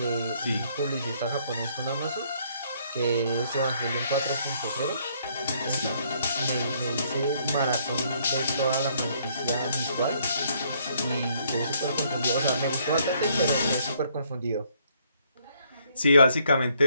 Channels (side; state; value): both; inverted; correlation -0.67